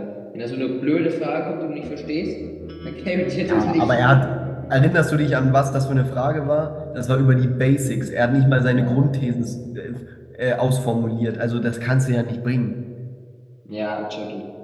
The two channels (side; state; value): both; identical; correlation 1.00